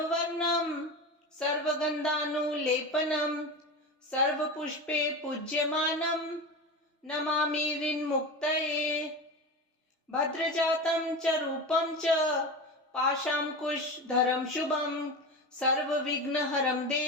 सर्वगन्धानुलेपनं सर्वपुष्पे पूज्यमानं नमामि ऋन्मुक्तये। भद्रजातं च रूपं च पाशाङ्कुशधरं शुभं सर्वविघ्नहरं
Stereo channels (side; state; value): both; normal; correlation 0.25